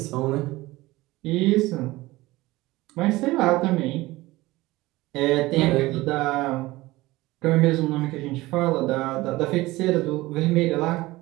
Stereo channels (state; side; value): quieter; left; 19.3 dB